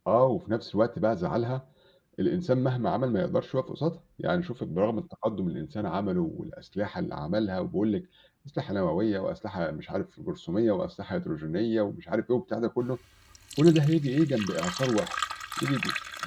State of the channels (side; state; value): both; identical; correlation 1.00